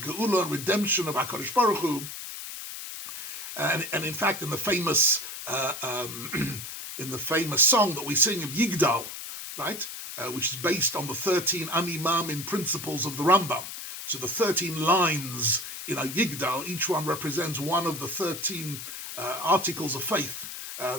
and redemption of HaKadosh Baruch Hu. And in fact, in the famous song that we sing of Yigdal, right, which is based on the 13 Animamin principles of the Rambam. So the 13 lines in a Yigdal, each one represents one of the 13 articles of faith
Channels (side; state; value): left; noise; hiss, 9 dB below the sound